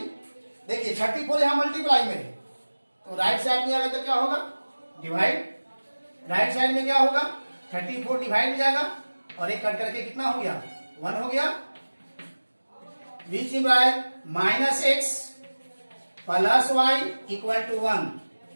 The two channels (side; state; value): both; inverted; correlation -1.00